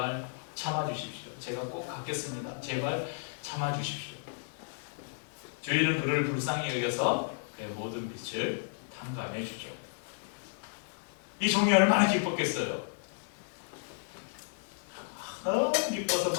참아주십시오. 제가 꼭 갚겠습니다. 제발 참아주십시오. 주인은 그를 불쌍히 여겨서 그의 모든 빚을 탕감해 주죠. 이 종이 얼마나 기뻤겠어요. 너무 기뻐서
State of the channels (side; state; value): right; silent; 56 dB below the other